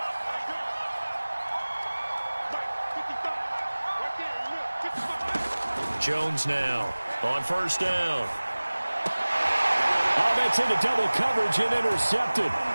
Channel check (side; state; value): both; inverted; correlation -1.00